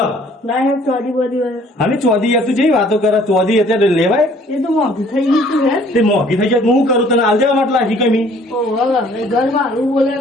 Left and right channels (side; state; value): both; normal; correlation 0.57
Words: ના ચોરી બધી અને ચોધી તું જેવી વાતો કરે ચોધી અત્યારે લેવાય એ તો મોંઘી થઈ ગઈ તું હે તે મોંઘી થઈ જાય હું કરું તને હાલ દેવા માટે લાગી કમી ઘર મારું બોલે